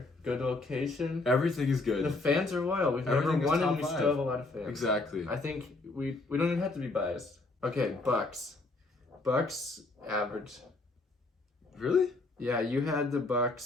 good location. everything is The good. fans are loyal. We've never Everything is won, and top we 5. still have a lot of fans. Exactly. I think we don't even have to be biased. Okay, Bucks. Bucks average. Really? Yeah, you had the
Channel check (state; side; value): quieter; right; 3.2 dB